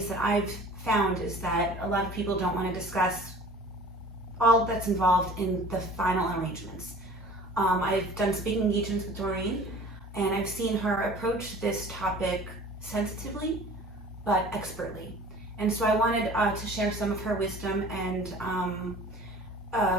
that I've found is that a lot of people don't want to discuss all that's involved in the final arrangements. I've done speaking engagements with Doreen, and I've seen her approach this topic sensitively but expertly. And so I wanted to share some of her wisdom and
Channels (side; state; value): both; normal; correlation 0.45